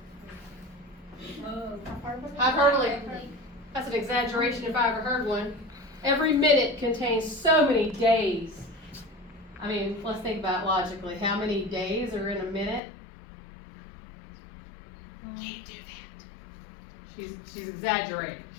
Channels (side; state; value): right; drops out; at 12.8 s